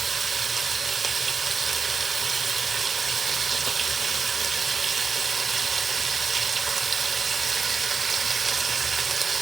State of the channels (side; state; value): left; quieter; 5.1 dB